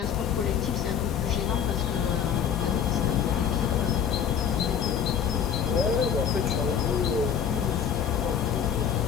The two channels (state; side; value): quieter; right; 8.0 dB